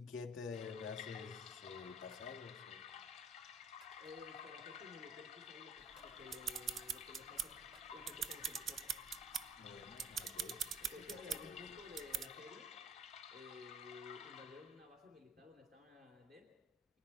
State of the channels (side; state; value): both; normal; correlation 0.53